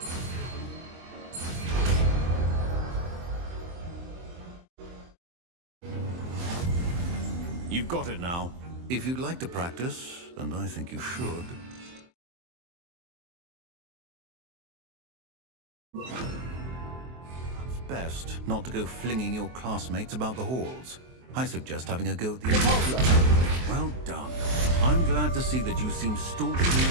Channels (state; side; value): late; left; 23 ms